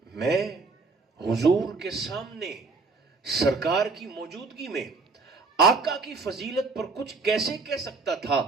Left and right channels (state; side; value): quieter; left; 4.1 dB